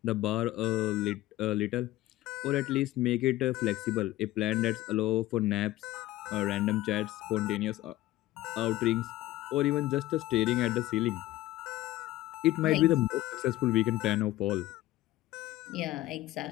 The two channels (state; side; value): quieter; right; 16.3 dB